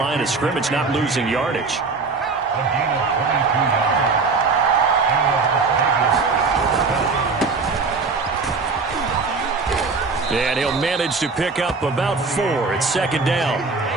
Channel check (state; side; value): quieter; left; 4.4 dB